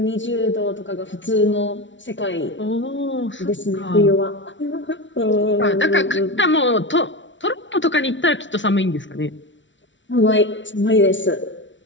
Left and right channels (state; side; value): late; right; 0.55 ms